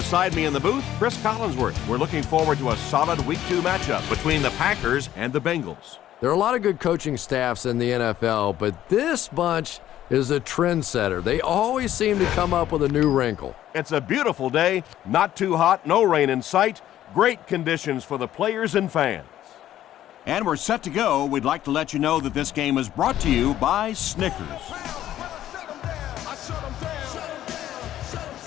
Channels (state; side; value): quieter; right; 12.5 dB